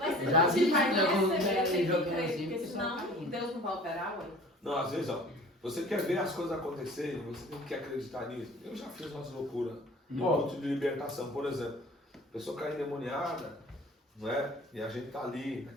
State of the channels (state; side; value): normal; both; correlation 0.45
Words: Já vi Vai que algum receber, tem que jogando crer, assim, porque senão Deus não vai operar, ué. Não, às vezes, ó, você quer ver as coisas acontecerem, você tem que acreditar nisso. Eu já fiz umas loucuras no culto de libertação, por exemplo. A pessoa cai endemoniada, não é? E a gente tá ali,